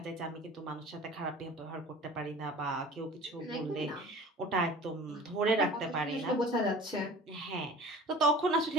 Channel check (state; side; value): normal; both; correlation 0.42